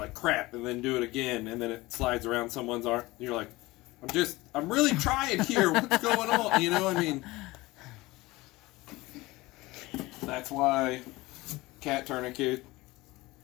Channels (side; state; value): right; quieter; 20.5 dB